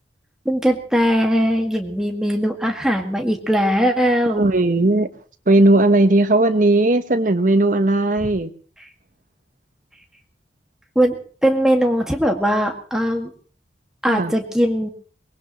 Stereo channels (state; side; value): normal; both; correlation 0.71